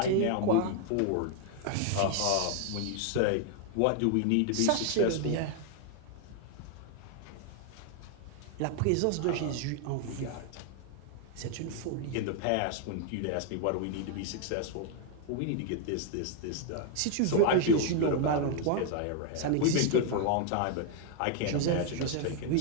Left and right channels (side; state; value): both; different; correlation 0.00